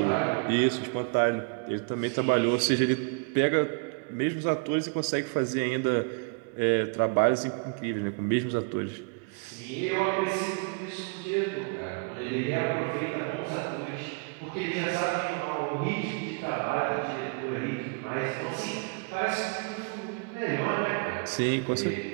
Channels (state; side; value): quieter; left; 35.0 dB